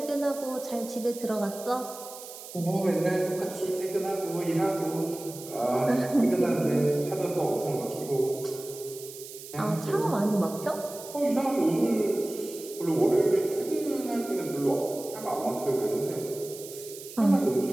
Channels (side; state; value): right; noise; hiss, 14 dB below the sound